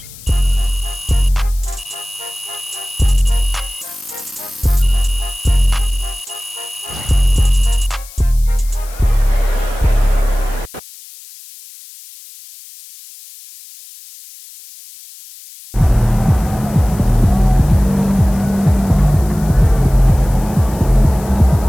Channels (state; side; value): noise; left; hiss, 19 dB below the sound